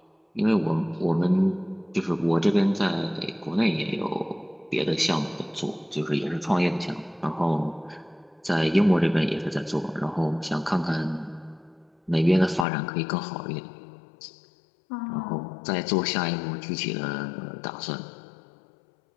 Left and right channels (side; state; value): right; drops out; at 12.7 s